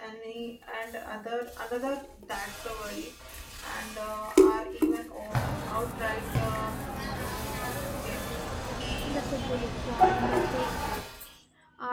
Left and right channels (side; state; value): both; identical; correlation 1.00